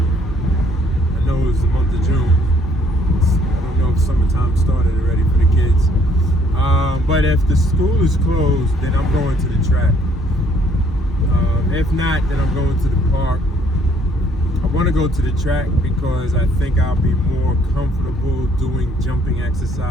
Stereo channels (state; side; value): normal; both; correlation 0.64